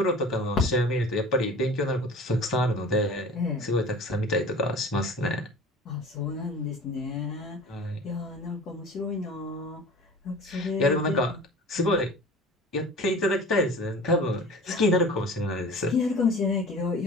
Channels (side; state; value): both; normal; correlation 0.40